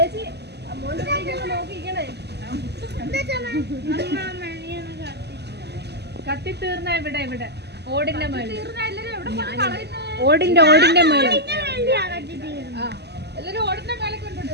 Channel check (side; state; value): left; late; 0.49 ms